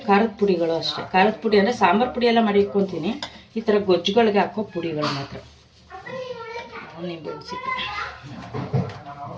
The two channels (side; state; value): both; identical; correlation 1.00